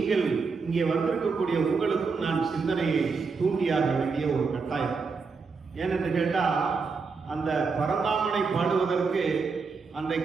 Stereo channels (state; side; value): quieter; left; 4.8 dB